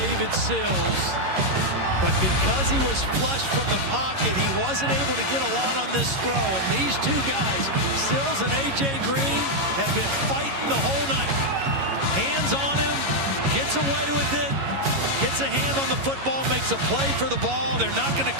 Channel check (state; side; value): late; left; 11 ms